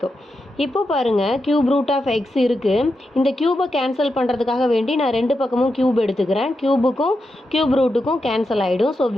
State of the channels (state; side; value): normal; both; correlation 0.87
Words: இப்போ பாருங்கள், கியூப் ரூட் ஆஃப் எக்ஸ் இருக்குது. இந்த கியூபை கேன்சல் பண்ணுறதுக்காக வேண்டி நான் ரெண்டு பக்கமும் கியூப் எடுத்துக்கிறேன். கியூபுக்கும் கியூப் ரூட்டுக்கும் கேன்சல் ஆகிடும். ஸோ